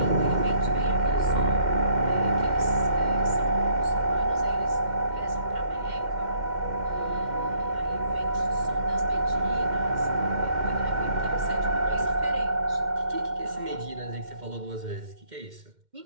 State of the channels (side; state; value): left; late; 2.1 ms